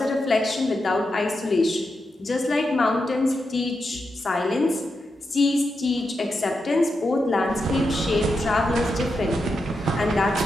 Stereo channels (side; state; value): both; normal; correlation 0.86